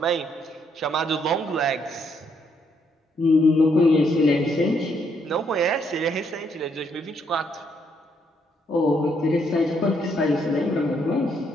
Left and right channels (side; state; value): both; normal; correlation 0.73